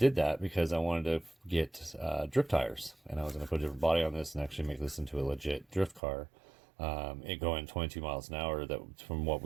that because I wanted to get drift tires, and I was going to put a different body on this and actually make this into a legit drift car. It going 22 miles an hour. That from what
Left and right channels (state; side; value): drops out; left; at 6.0 s